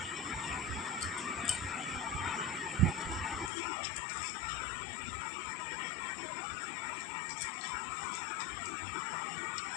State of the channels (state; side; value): drops out; right; at 3.5 s